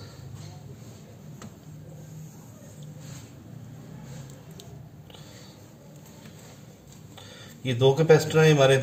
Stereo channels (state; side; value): identical; both; correlation 1.00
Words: ये दो कैपेसिटर हैं, हमारे